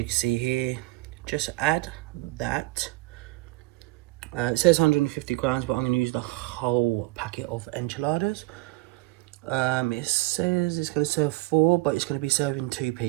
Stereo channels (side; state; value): left; quieter; 21.5 dB